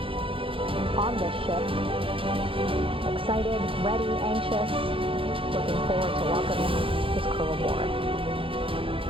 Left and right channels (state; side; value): late; left; 0.26 ms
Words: on this ship. Excited, ready, anxious, looking forward to welcoming his crew aboard.